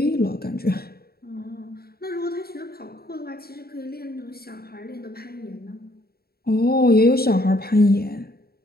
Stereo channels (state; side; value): late; right; 0.45 ms